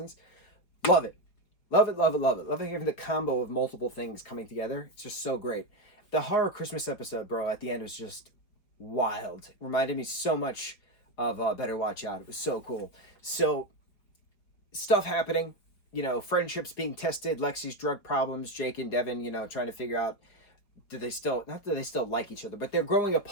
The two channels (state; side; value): late; right; 4.8 ms